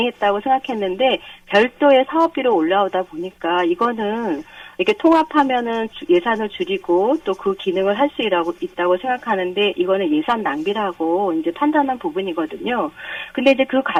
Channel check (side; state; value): both; identical; correlation 1.00